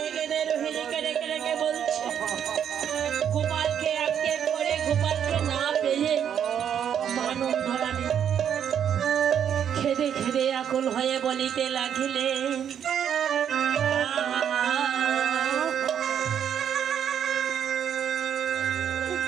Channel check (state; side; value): quieter; left; 8.8 dB